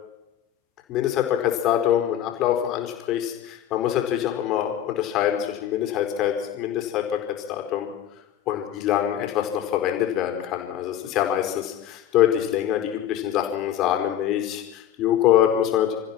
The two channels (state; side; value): quieter; right; 10.9 dB